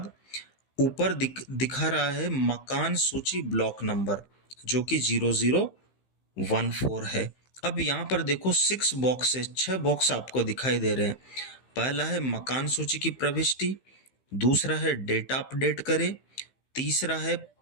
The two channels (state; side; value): late; right; 15 ms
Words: ऊपर दिखा रहा है मकान सूची ब्लॉक नंबर जो कि 0014 है। अब यहाँ पर देखो 6 बॉक्स है, 6 बॉक्स आपको दिखाई दे रहे हैं। पहला है मकान सूची की प्रविष्टि, दूसरा है डेटा अपडेट करें, तीसरा है